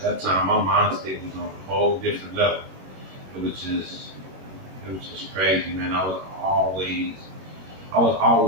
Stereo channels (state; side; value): late; left; 21 ms